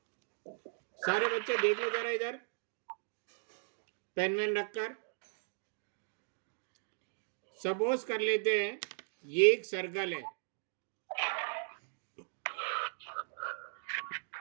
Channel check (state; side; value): silent; left; digital silence